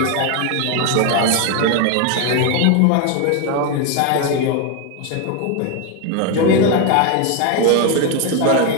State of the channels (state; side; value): different; both; correlation 0.01